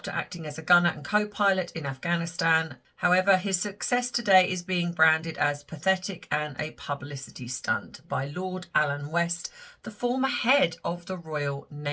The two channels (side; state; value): both; identical; correlation 1.00